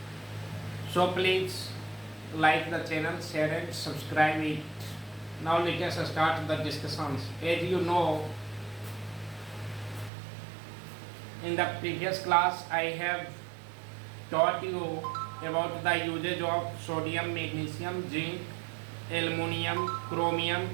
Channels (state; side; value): drops out; left; at 10.1 s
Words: So please like the channel, share and subscribe it. Now let us start the discussions. As you know, in the previous class I have taught you about the usage of sodium, magnesium, zinc, aluminum, chromium,